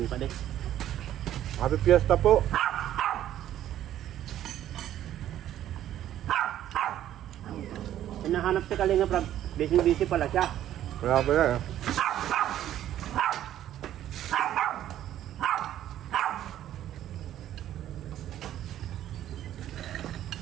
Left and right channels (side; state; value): left; quieter; 12.0 dB